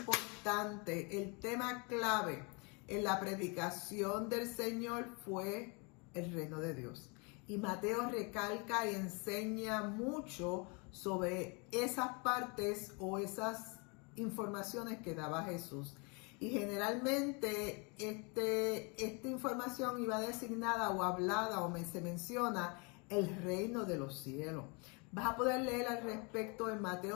el tema clave en la predicación del Señor fue el reino de Dios. Y Mateo recalca y enseña mucho sobre esas partes o esas informaciones que daba Jesús. Y generalmente esta información iba designada o hablada o se menciona el reino de los cielos. Vas a poder leer al respecto en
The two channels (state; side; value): quieter; right; 31.7 dB